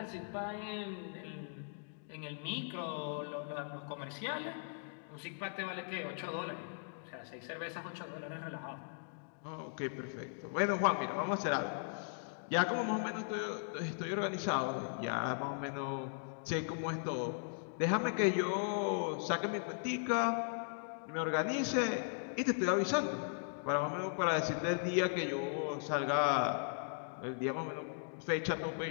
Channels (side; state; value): right; silent; digital silence